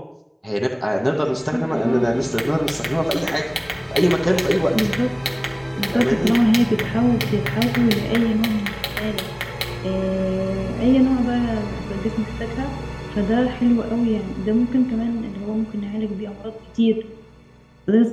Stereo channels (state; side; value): identical; both; correlation 1.00